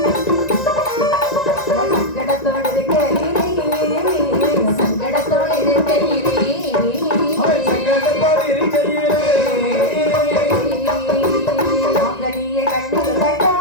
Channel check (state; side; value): late; right; 1.9 ms